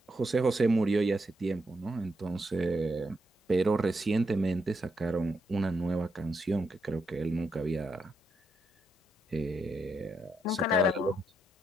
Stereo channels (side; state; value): both; normal; correlation 0.80